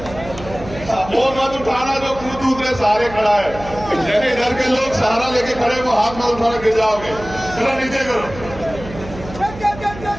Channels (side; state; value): right; noise; hum, 14 dB below the sound